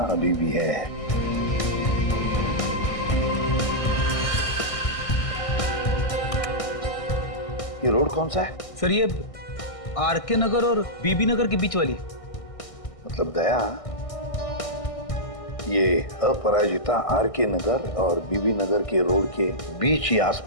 अभी भी है। ये रोड कौन सा है? सर ये आरके नगर और बीबी नगर के बीच वाली। मतलब दया, ये अपराजिता आरके नगर और बीबी नगर के रोड के बीच ही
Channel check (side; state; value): right; late; 1.6 ms